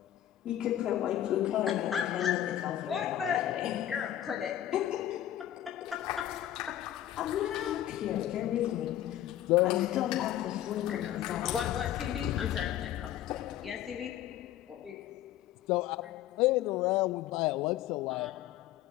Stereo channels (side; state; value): right; quieter; 12.3 dB